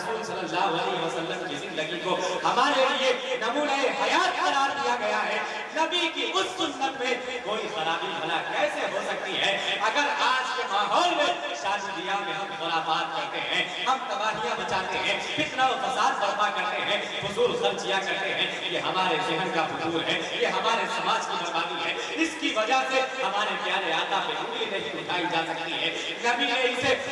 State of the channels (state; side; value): identical; both; correlation 1.00